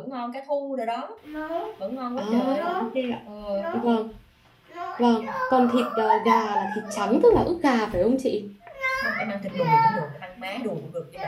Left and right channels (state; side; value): identical; both; correlation 1.00